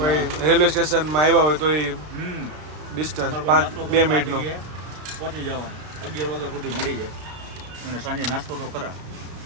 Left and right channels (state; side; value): late; left; 33 ms